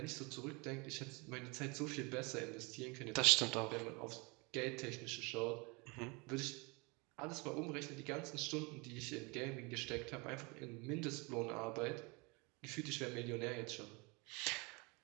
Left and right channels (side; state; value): left; quieter; 28.4 dB